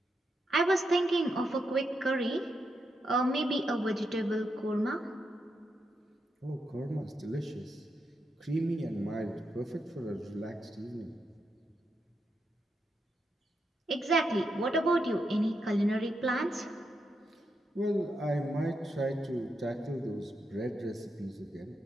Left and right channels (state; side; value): normal; both; correlation 0.83